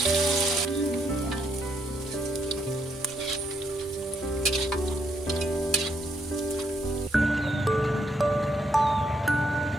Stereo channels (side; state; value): both; normal; correlation 0.75